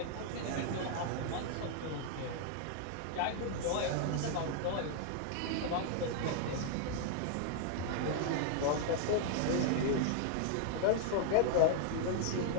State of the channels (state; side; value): different; both; correlation 0.00